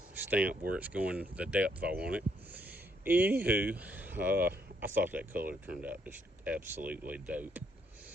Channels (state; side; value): normal; both; correlation 0.72